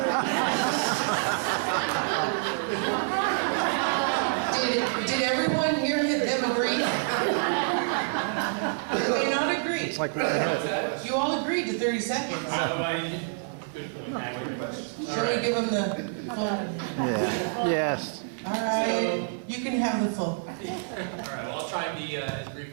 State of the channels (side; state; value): left; silent; digital silence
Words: Did everyone here them agree? They may not agree. It's like right ahead. You all agreed to 30 seconds. Good point. Shall we give them the full? Yeah. Yes. All right, you can have the full. All right, well, I'll try and be as